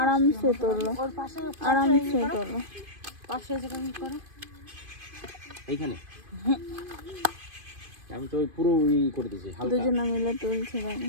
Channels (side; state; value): left; late; 2.5 ms